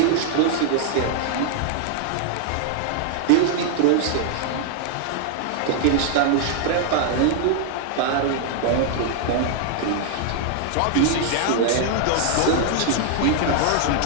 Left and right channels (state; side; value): different; both; correlation -0.01